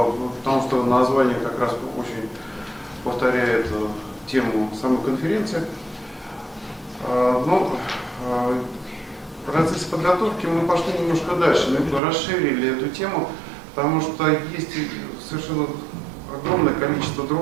что название как раз очень повторяет тему самой конференции. Но в процессе подготовки мы пошли немножко дальше, мы расширили эту тему, потому что есть совершенно огромное количество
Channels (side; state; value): left; drops out; at 12.0 s